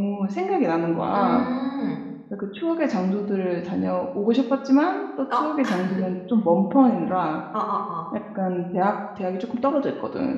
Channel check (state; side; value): identical; both; correlation 1.00